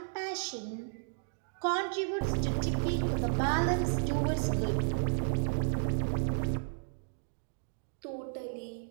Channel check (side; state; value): left; silent; digital silence